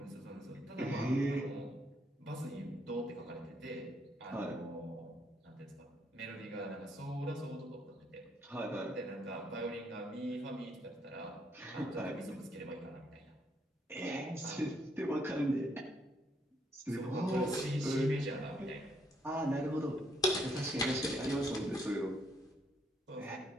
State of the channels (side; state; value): both; normal; correlation 0.72